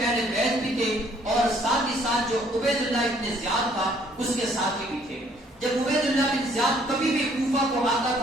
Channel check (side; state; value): both; normal; correlation 0.62